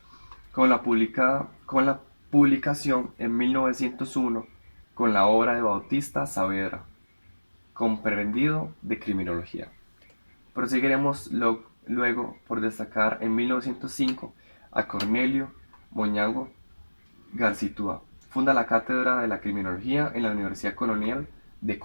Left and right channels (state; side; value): inverted; both; correlation -1.00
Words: Con la publicación en 1901 con la obra de Bautista Saavedra, Comprendido de Criminología. Proseguiremos luego por destacar en 1905 a Cornelio Moñango Garcitúa. Funda la Cátedra de la Criminología en la Universidad Colonial de